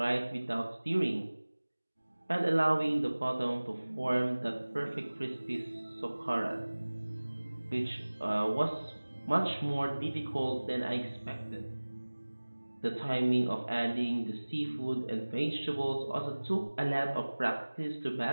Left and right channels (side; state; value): both; inverted; correlation -1.00